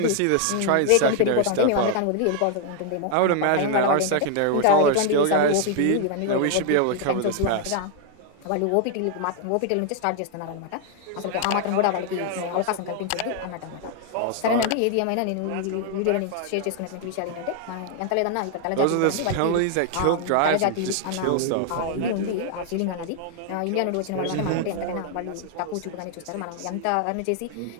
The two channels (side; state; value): both; different; correlation 0.00